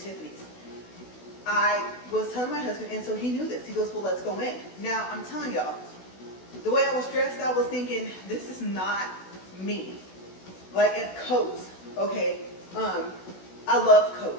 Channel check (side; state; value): right; late; 16 ms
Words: I was telling my husband, and so he knew this. He goes, well, let's go in. Now, I'm telling y'all, the way I was dressed, I was thinking, this is not me. Like, in coats, okay? I love